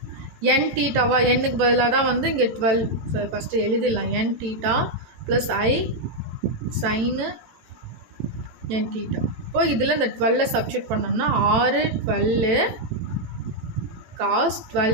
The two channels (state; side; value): late; left; 18 ms